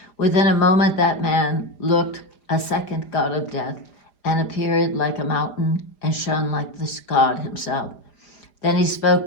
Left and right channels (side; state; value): right; late; 4.9 ms